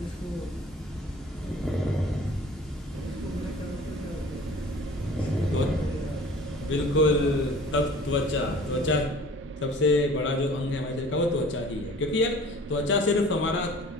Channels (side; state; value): both; normal; correlation 0.47